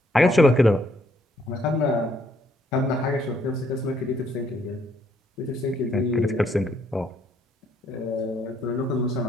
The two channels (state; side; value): normal; both; correlation 0.69